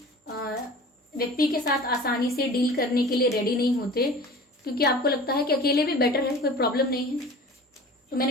व्यक्ति के साथ आसानी से डील करने के लिए रेडी नहीं होते, क्योंकि आपको लगता है कि अकेले भी बेटर है, कोई प्रॉब्लम नहीं है। तो मैंने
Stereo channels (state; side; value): normal; both; correlation 0.40